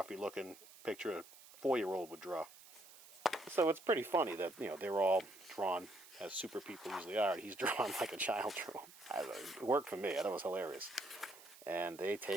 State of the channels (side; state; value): right; noise; hiss, 20 dB below the sound